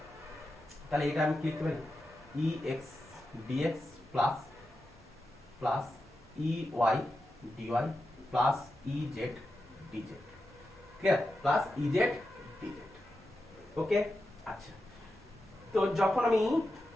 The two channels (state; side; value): normal; both; correlation 0.89